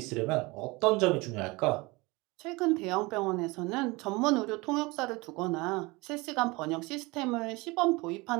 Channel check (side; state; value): left; quieter; 24.1 dB